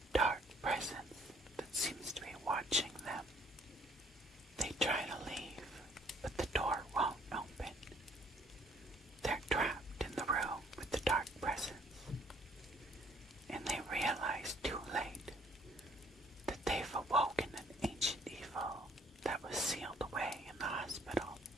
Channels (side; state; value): both; normal; correlation 0.62